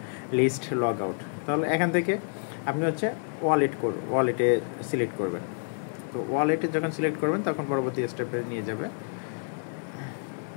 list, log out. তাহলে এখান থেকে আপনি হচ্ছে ওয়ালেটে সিলেক্ট করবেন। তো ওয়ালেটে যখন সিলেক্ট করবেন তখন পরবর্তী স্টেপে নিয়ে যাবে।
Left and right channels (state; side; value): silent; right; 59 dB below the other